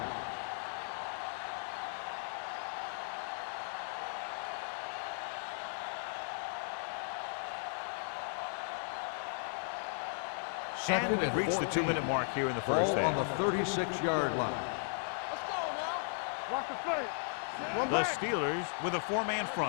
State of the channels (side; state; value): right; silent; digital silence